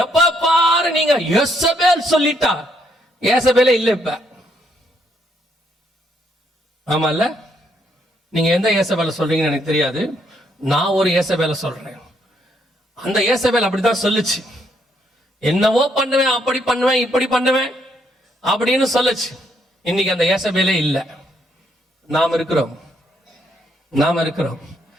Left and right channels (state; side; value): normal; both; correlation 0.73